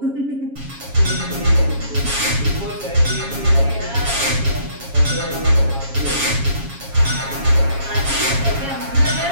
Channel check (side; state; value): left; late; 7.3 ms